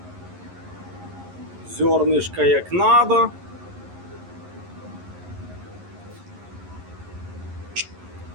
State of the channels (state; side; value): late; left; 11 ms